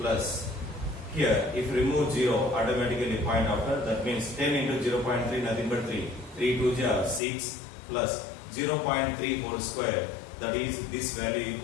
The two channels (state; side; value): drops out; right; at 7.2 s